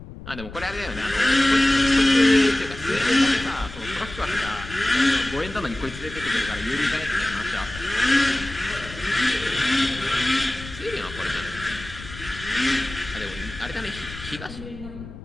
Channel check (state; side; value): noise; left; rumble, 14 dB below the sound